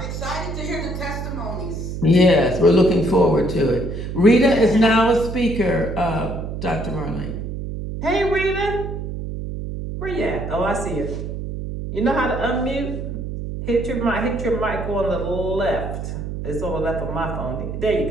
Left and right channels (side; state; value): right; noise; hum, 6 dB below the sound